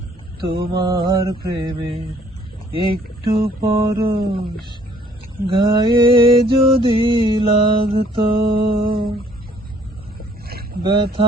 তোমার প্রেমের একটু পরশ গায়ে যদি লাগতো।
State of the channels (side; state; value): both; normal; correlation 0.61